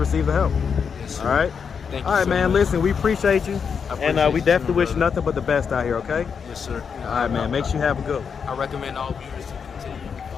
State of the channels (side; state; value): right; quieter; 6.4 dB